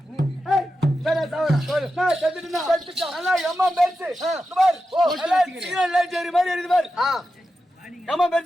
ஏய் சரி சாவறேன். நான் செத்துட்டேனா? செத்துட்டேன். நல்லா எம்மா பேச்சு. பார். ஓ எல்லாம் சிக்னல் லைட் ஏறி மாதிரி இருக்குது பார். எம்மா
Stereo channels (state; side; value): normal; both; correlation 0.90